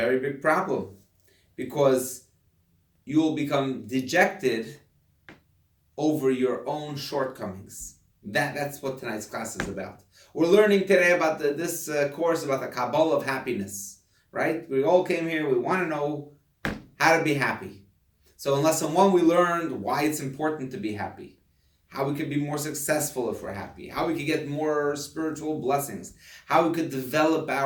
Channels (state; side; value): identical; both; correlation 1.00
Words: big problem. Because you will become dejected over your own shortcomings. That's what tonight's class is about. We're learning today about this course about the Kabbalah of happiness. Right? We all came here, we want to know how to be happy. So in lesson 1 we learned why it's important to be happy. How we could be more successful if we're happy. How we could get more spiritual blessings. How we could develop